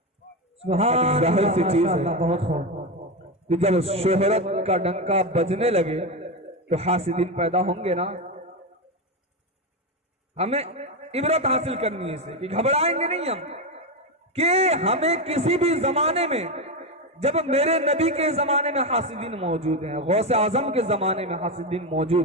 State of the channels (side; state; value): both; normal; correlation 0.12